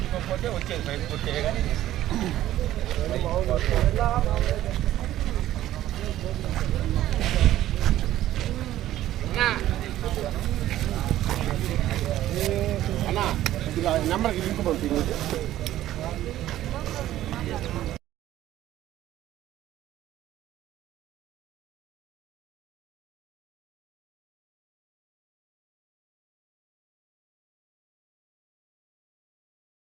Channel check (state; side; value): quieter; left; 13.6 dB